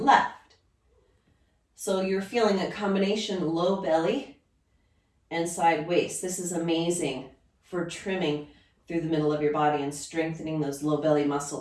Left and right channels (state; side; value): identical; both; correlation 1.00